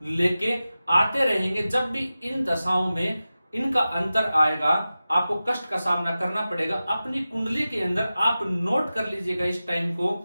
लेके आते रहेंगे। जब भी इन दशाओं में इनका अंतर आएगा आपको कष्ट का सामना करना पड़ेगा। अपनी कुंडली के अंदर आप नोट कर लीजिएगा इस टाइम को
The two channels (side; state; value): both; inverted; correlation -0.95